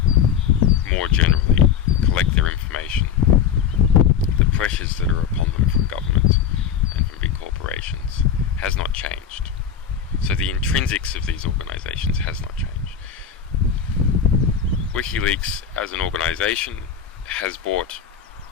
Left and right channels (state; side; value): quieter; right; 7.8 dB